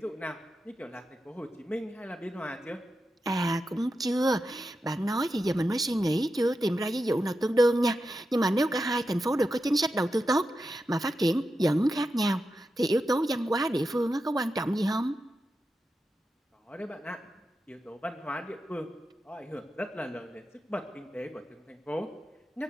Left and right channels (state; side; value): normal; both; correlation 0.89